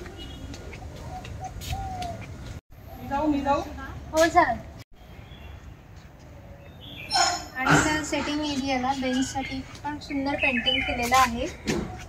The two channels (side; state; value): both; identical; correlation 1.00